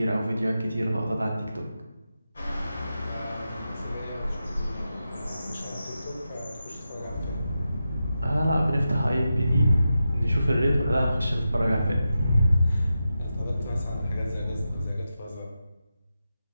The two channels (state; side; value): inverted; both; correlation -0.90